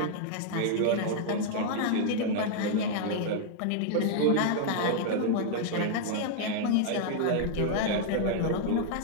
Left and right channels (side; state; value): both; different; correlation -0.01